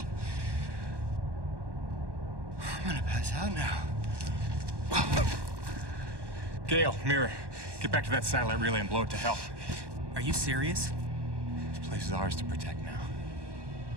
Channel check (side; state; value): left; late; 1.1 ms